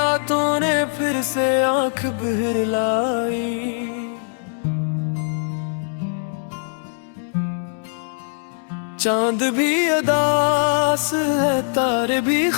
ने फिर से आंख भर लाई। चांद भी उदास है, तारे भी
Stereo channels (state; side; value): silent; right; 65 dB below the other